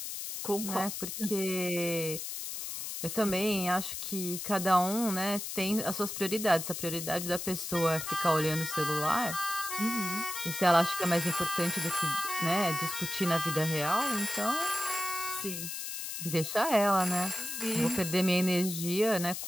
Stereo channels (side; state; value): left; noise; hiss, 6 dB below the sound